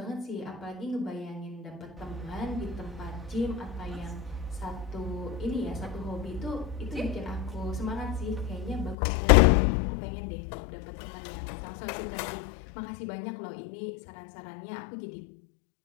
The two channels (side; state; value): right; drops out; at 9.0 s